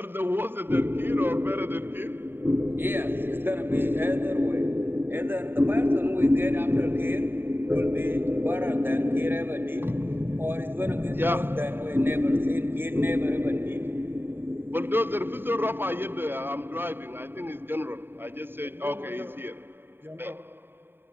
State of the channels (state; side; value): late; left; 0.10 ms